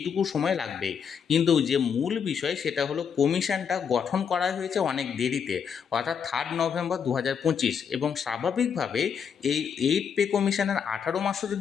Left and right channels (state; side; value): quieter; right; 7.1 dB